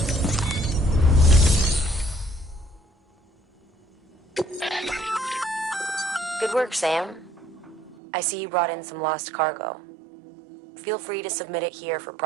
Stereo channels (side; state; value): left; drops out; at 8.0 s